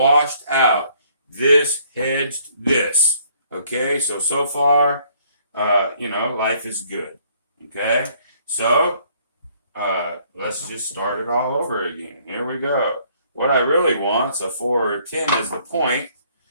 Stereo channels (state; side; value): inverted; both; correlation -0.64